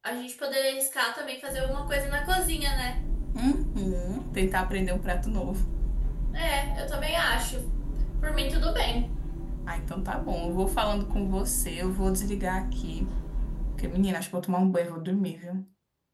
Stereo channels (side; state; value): both; identical; correlation 1.00